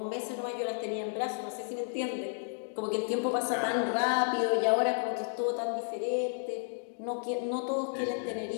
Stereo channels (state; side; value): silent; right; digital silence